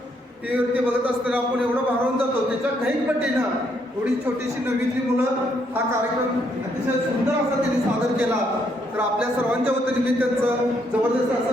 टीव्हीवरती बघत असताना आपण एवढं भारावून जातो, त्याच्या काही पटीनं एवढी छोटीशी नवीतली मुलं हा कार्यक्रम अतिशय सुंदर असा त्यांनी सादर केला। तर आपल्या सर्वांच्या वतीने मी त्यांचं जबरदस्त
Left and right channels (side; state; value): both; normal; correlation 0.73